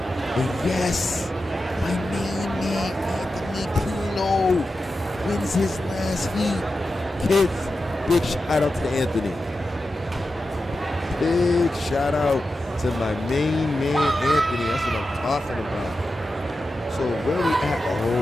And yes, my main man, Anthony Pino, wins his last heat. Kids, big shout out to Anthony. Big shout out to my main man, Anthony. That's what I'm talking about. So where we at?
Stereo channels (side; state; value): both; normal; correlation 0.91